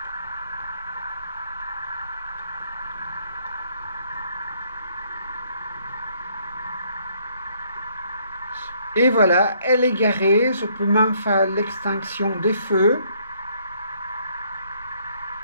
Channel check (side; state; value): both; inverted; correlation -0.66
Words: Et voilà, elle est garée. Je peux même faire l'extinction des feux.